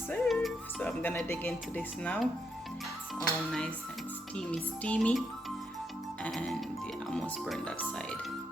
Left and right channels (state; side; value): normal; both; correlation 0.79